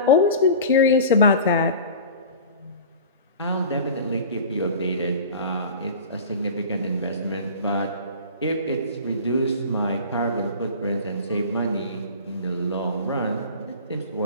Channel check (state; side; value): inverted; both; correlation -0.37